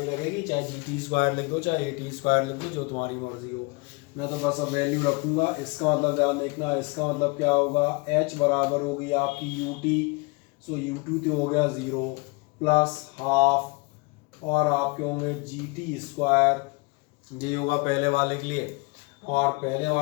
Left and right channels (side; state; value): right; quieter; 27.5 dB